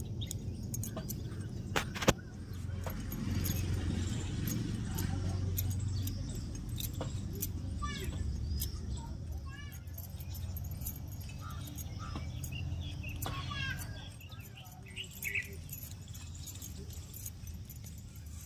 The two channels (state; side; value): identical; both; correlation 1.00